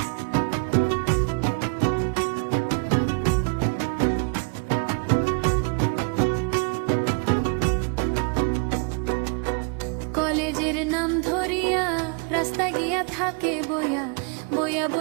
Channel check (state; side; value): quieter; left; 33.6 dB